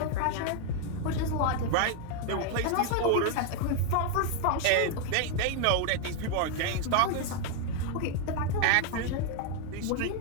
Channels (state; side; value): different; both; correlation 0.01